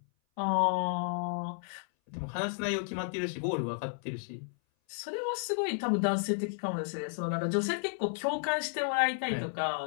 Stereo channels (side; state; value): right; silent; 56 dB below the other